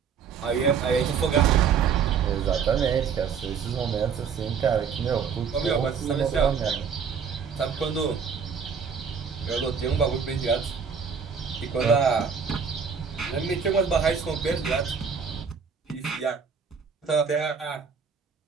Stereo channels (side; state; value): left; quieter; 6.4 dB